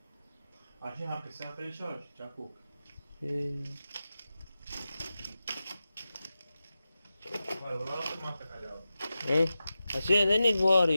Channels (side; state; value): both; inverted; correlation -0.92